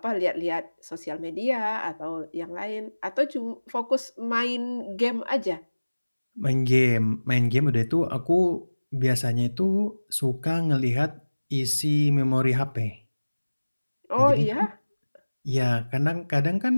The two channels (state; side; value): inverted; both; correlation -1.00